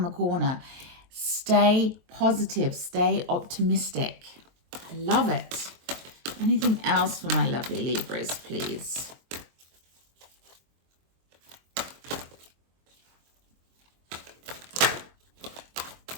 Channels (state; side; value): late; left; 23 ms